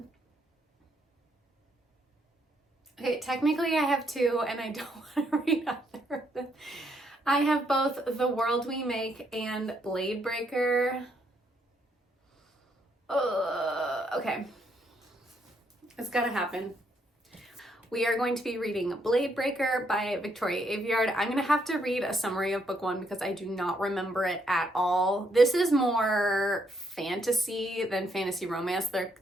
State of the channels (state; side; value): normal; both; correlation 0.74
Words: Okay, technically I have 2 and I don't want to read either of them. I have both The World We Make and Blade Breaker. Okay. It's gotta happen. We are going to be reading Blade Breaker by Victoria Aveyard. I'm gonna have to read a summary of book 1 because I do not remember it at all. This is more fantasy than fantasy romance.